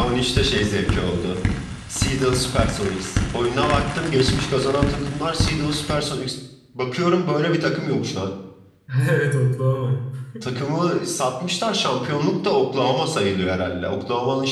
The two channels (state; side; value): identical; both; correlation 1.00